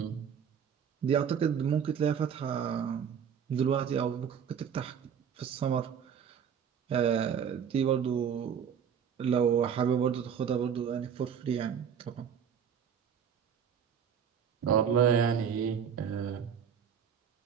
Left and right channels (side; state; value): left; quieter; 7.8 dB